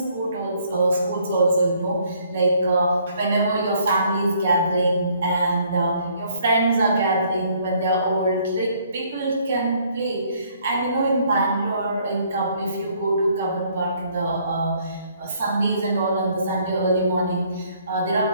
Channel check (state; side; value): inverted; both; correlation -0.64